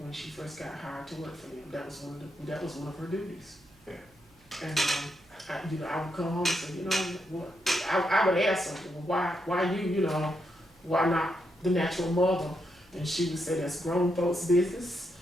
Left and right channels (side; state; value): right; noise; hum, 29 dB below the sound